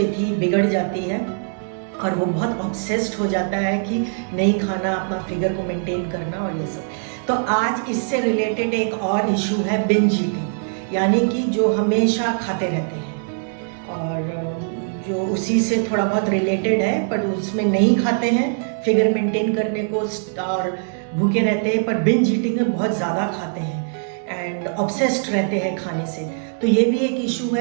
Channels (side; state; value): left; silent; 62 dB below the other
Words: बिगड़ जाती है और वो बहुत ऑब्सेस्ड हो जाता है कि नहीं खाना, अपना फिगर को मेंटेन करना और ये सब। तो आज इससे रिलेटेड एक और इशू है बिंज ईटिंग, यानी कि जो हमेशा खाते रहते हैं और जो उसी से थोड़ा बहुत रिलेटेड है, पर उसमें नहीं खाते हैं फिगर मेंटेन करने को और भूखे रहते हैं, पर बिंज ईटिंग में बहुत ज़्यादा खाते हैं एंड ऑब्सेस्ड रहते हैं खाने से। तो ये भी एक इशू